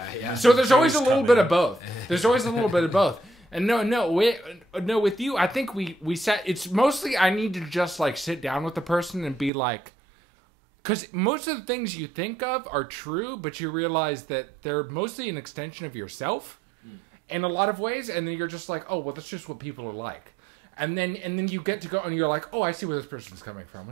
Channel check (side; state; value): left; drops out; at 9.5 s